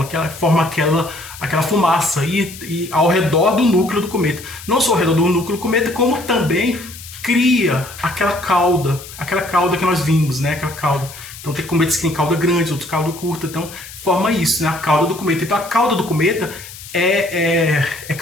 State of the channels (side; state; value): left; noise; hiss, 15 dB below the sound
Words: forma aquela fumaça e ao redor do núcleo do cometa. Não só ao redor do núcleo do cometa, como também cria aquela cauda que nós vimos, né? Aquela cauda. Então tem cometas que tem cauda grande, outros cauda curta, então forma isso, né? A cauda do cometa. Então a cauda do cometa é